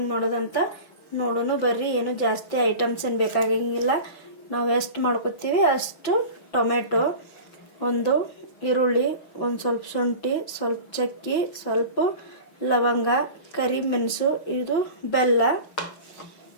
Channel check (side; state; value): right; late; 5.9 ms